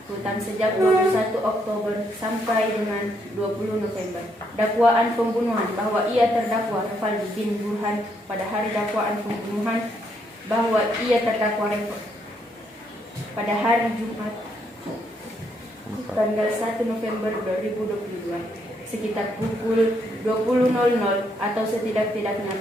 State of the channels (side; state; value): both; normal; correlation 0.74